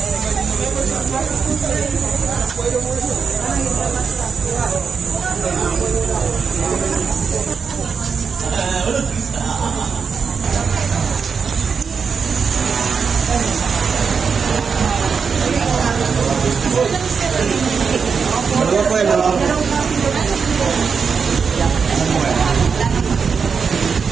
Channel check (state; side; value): quieter; left; 5.8 dB